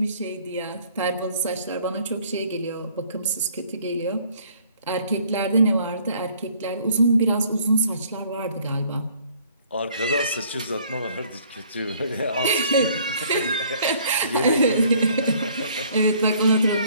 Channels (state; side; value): inverted; both; correlation -0.59